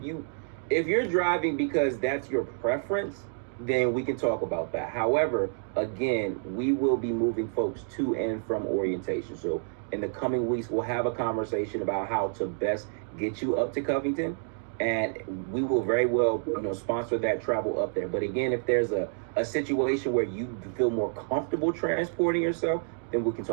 you're driving because that's your preference, then we can talk about that. However, again, we will be moving folks to and from orientation. So in the coming weeks, we'll have a conversation about how to best get you up to Covington, and we will very well, sponsor that travel up there. But again, if there's a situation where you feel more comfortable transporting yourself, then we can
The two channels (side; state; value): left; silent; digital silence